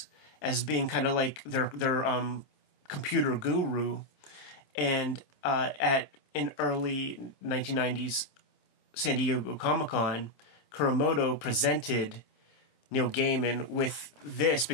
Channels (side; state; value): right; late; 26 ms